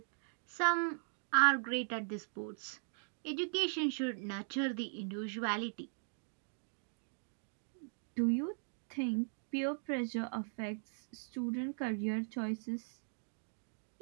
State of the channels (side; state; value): left; silent; digital silence